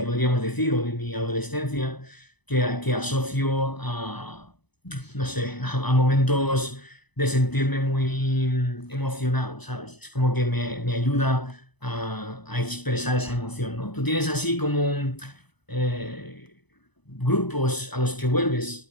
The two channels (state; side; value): late; right; 0.99 ms